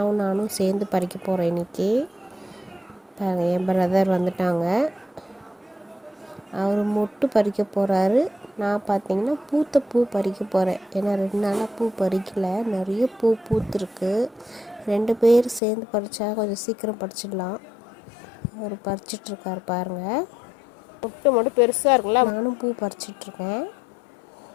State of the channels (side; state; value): right; drops out; at 15.6 s